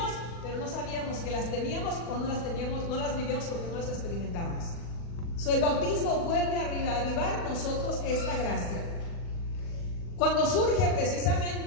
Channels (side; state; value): right; late; 40 ms